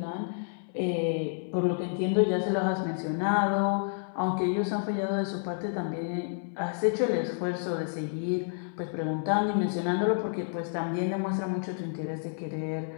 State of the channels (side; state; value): right; silent; 58 dB below the other